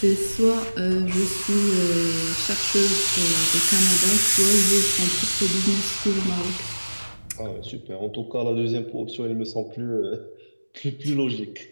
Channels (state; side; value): inverted; both; correlation -1.00